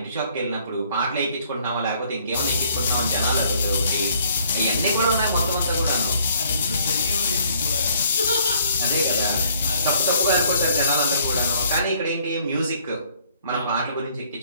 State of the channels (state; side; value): inverted; both; correlation -0.62